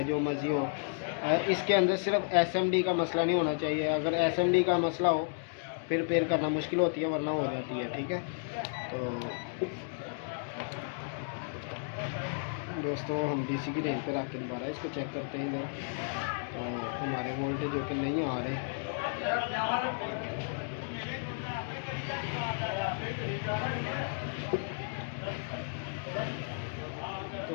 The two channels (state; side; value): silent; right; digital silence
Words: जो मर्ज़ी हो। इसके अंदर सिर्फ एसएमडी का मसला नहीं होना चाहिए। अगर एसएमडी का मसला हो फिर रिपेयर करना मुश्किल होती है, वरना हो जाती है। ठीक है, तो दोस्तों हम डीसी की रेंज पर रख के दोबारा इसको चेक करते हैं इधर। तो हमारे वोल्टेज जो कि नहीं आ रहे।